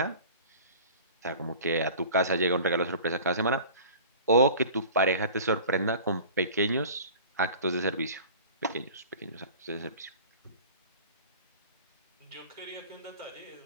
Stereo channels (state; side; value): inverted; both; correlation -0.41